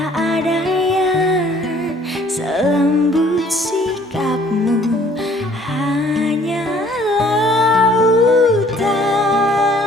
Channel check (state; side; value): normal; both; correlation 0.58